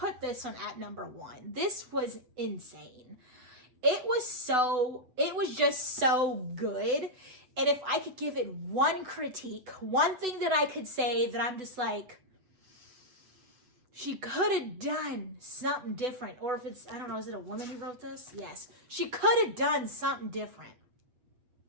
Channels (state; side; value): late; left; 8.0 ms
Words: this one at number 1. This was insane. It was just so good. And if I could give it one critique, one thing that I could say that I'm just like, she could have done something different. Or if it's, I don't know, is it a woman who wrote this? Yes. She could have done something different.